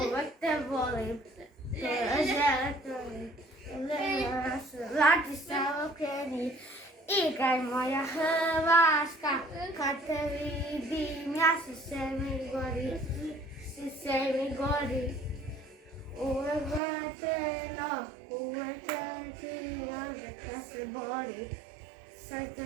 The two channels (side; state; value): left; drops out; at 16.8 s